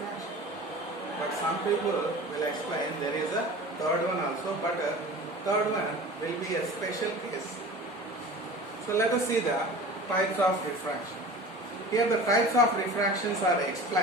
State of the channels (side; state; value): both; normal; correlation 0.37